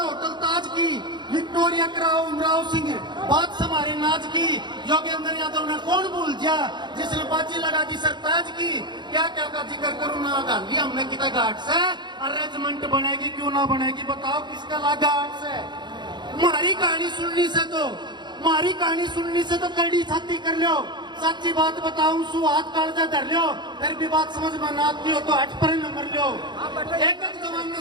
होटल ताज की, विक्टोरिया कराओ, उमराव सिंह, बात हमारे नाज की, योगेंद्र यादव ने कौन भूल जा जिसने बाजी लगा दी सरताज की। क्या क्या का जिक्र करूं ना, गांधी हमने कितना घाट से। अरेंजमेंट बनेगी क्यों ना बनेगी, बताओ किसका लगा 8 से। हमारी कहानी सुननी से तो कड़ी छाती कर लो। सच्ची बात बताऊं, सु हाथ कालजा धर लो, फिर भी बात समझ में ना आती हो तो 8 पर नंबर लो। एक जवान ने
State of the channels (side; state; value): left; late; 0.22 ms